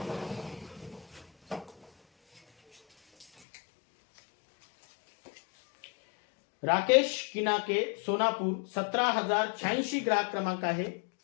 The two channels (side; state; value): right; drops out; at 3.2 s